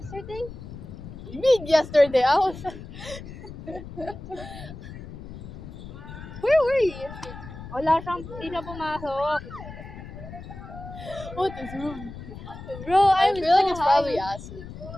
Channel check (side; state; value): left; noise; rumble, 12 dB below the sound